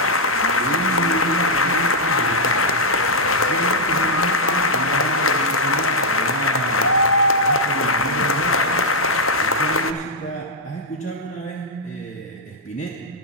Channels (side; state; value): both; normal; correlation -0.05